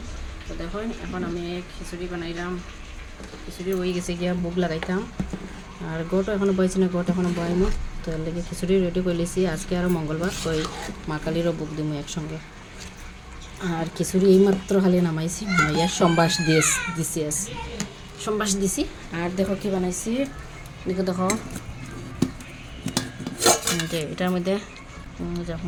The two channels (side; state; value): both; identical; correlation 1.00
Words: তো দেখুন এখন আমি খিচুড়ি বানাইলাম। খিচুড়ি হয়ে গেছে গিয়া ভোগ লাগাইতাম। আর গোটও এখনও বইছি না, গোট এখনও বয়নো। তো এর লেগে খিচুড়ি রেডি করে লিছি। আজকে আরও মঙ্গলবার, তো এই মা কালীরও ভোগ দিমু একসঙ্গে। আর খিচুড়ি এইমাত্র খালি নামাইছি, নামাইয়া সম্বাস দিছি সম্বাস দিছি। আর দেখো কি বানাইছি, দেখো যে এটার মধ্যে